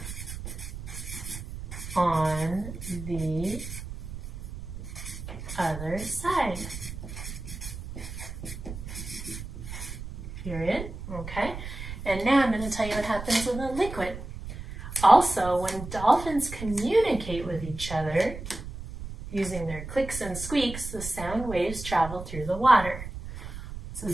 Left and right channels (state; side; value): noise; right; rumble, 9 dB below the sound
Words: on the other side. Period. Okay. And now I'm going to tell you what happens with a liquid. Also, when dolphins communicate with each other using their clicks and squeaks, the sound waves travel through the water.